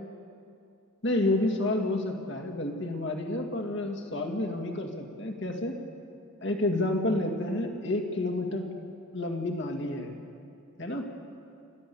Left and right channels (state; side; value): normal; both; correlation 0.42